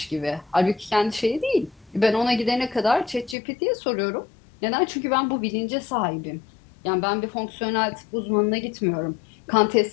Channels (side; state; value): right; drops out; at 3.4 s